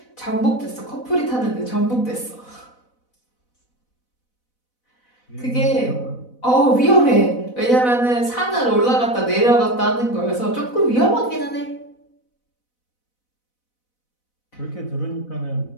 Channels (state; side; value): late; right; 4.0 ms